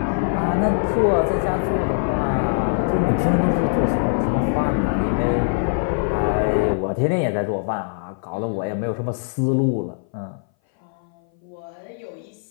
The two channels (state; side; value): silent; right; 60 dB below the other